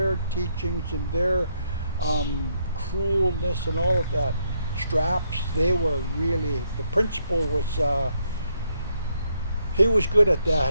teachings and their cruelness and all of that. Straps, they were really, the principal was, he was good at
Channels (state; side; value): inverted; both; correlation -0.76